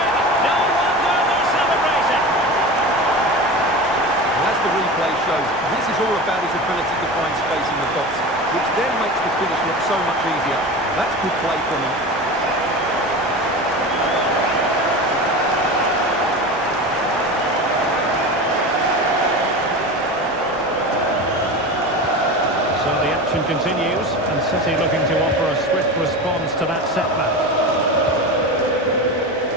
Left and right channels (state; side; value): normal; both; correlation 0.29